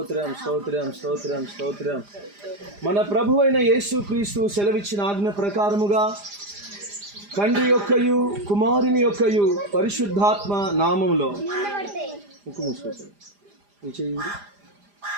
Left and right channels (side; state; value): left; late; 4.9 ms